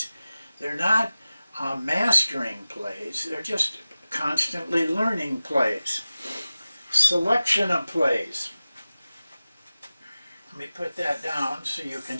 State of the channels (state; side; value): inverted; both; correlation -0.96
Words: They're not mastering plays. They're just constantly learning plays. Selection of plays. Let me put that down so you can